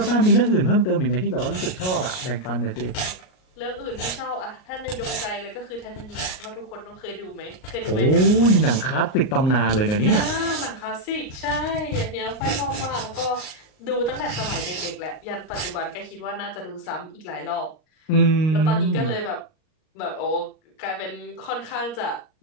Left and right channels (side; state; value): right; late; 38 ms